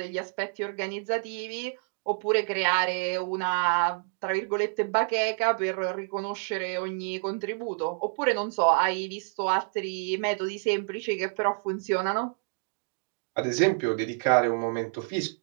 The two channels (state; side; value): silent; left; digital silence